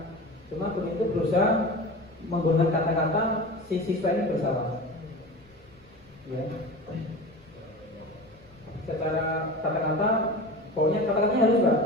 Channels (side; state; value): left; noise; rumble, 28 dB below the sound